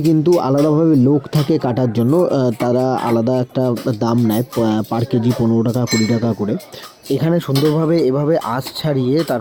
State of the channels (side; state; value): both; identical; correlation 1.00